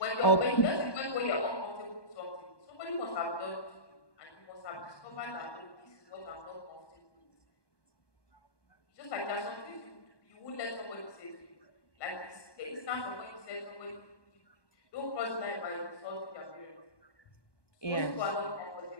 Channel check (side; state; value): right; late; 1.2 ms